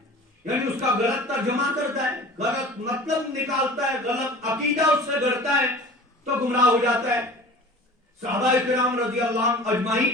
यानी उसका गलत तर्जुमा करता है, गलत मतलब निकालता है, गलत अकीदा उससे गढ़ता है तो गुमराह हो जाता है। सहाबाए किराम रज़ियल्लाहु अन्हुम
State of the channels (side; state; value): both; normal; correlation 0.40